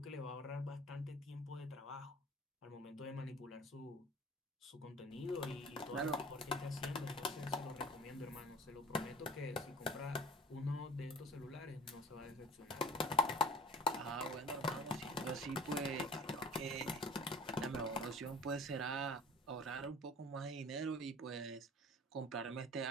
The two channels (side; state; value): both; normal; correlation 0.45